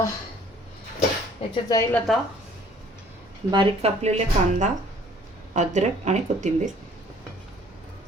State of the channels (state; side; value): normal; both; correlation 0.56